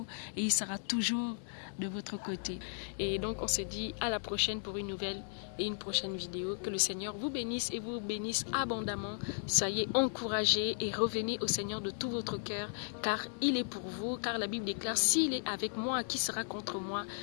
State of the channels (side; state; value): right; silent; 54 dB below the other